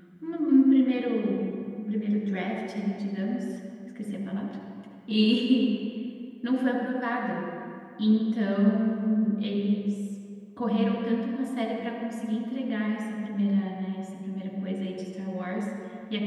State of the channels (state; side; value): identical; both; correlation 1.00